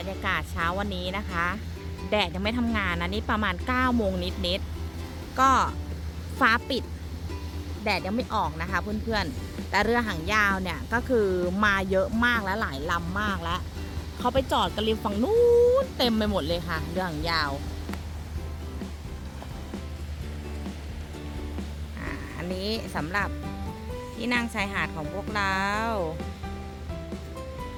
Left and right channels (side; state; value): both; identical; correlation 1.00